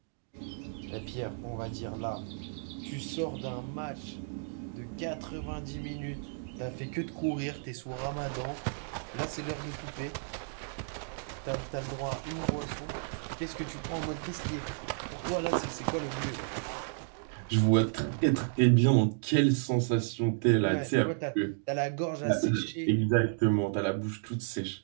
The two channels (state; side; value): silent; left; digital silence